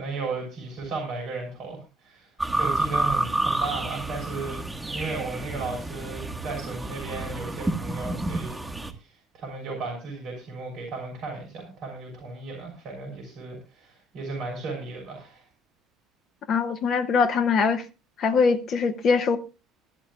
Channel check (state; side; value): normal; both; correlation 0.71